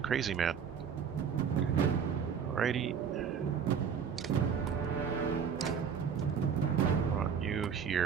man. Alrighty. Want you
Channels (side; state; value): left; quieter; 7.1 dB